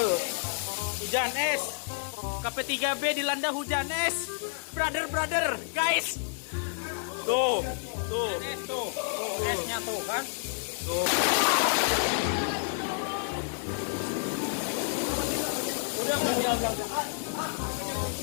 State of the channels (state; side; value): silent; right; digital silence